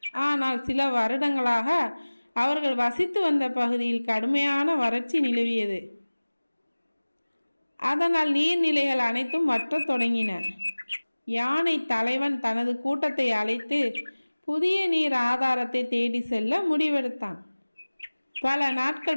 ஆனால் சில வருடங்களாக அவர்கள் வசித்து வந்த பகுதியில் கடுமையான வறட்சி நிலவியது. அதனால் நீர்நிலைகள் அனைத்தும் வற்றத் தொடங்கின. யானை தலைவன் தனது கூட்டத்தை அழைத்து புதிய நீர் ஆதாரத்தை தேடி செல்ல முடிவெடுத்தான். பல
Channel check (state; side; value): inverted; both; correlation -1.00